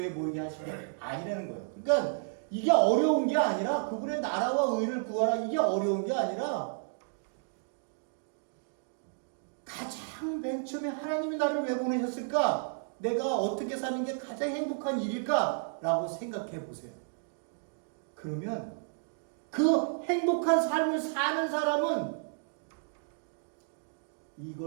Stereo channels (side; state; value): left; silent; digital silence